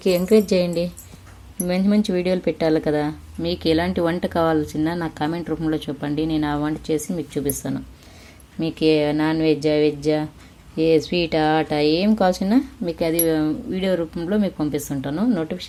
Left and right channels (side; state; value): both; identical; correlation 1.00